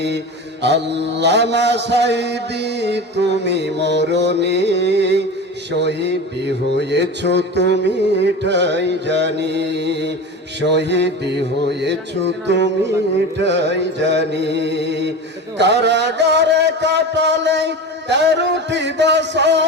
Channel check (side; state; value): both; normal; correlation 0.29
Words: আল্লামা সাঈদী তুমি মরণে শহীদি হয়েছ তুমি ঠাই জানি। শহীদি হয়েছ তুমি ঠাই জানি। কারাগারে কাটালে 13টি